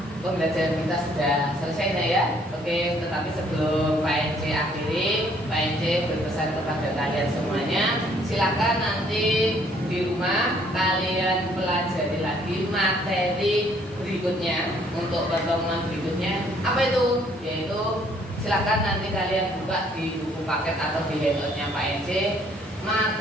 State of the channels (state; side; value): normal; both; correlation 0.63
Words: Pembelajaran kita sudah selesai nah ya. Oke, tetapi sebelum Pak NC akhiri, Pak NC berpesan kepada kalian semuanya, silakan nanti di rumah kalian pelajari lagi materi berikutnya untuk pertemuan berikutnya. Apa itu? Yaitu silakan nanti kalian buka di buku paket atau di handoutnya Pak NC